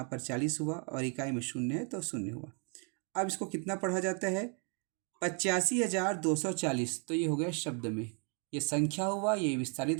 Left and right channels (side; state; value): left; quieter; 38.0 dB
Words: पर 40 हुआ, और इकाई में 0 है तो 0 हुआ। अब इसको कितना पढ़ा जाता है? 85,240। तो ये हो गया शब्द में, ये संख्या हुआ, ये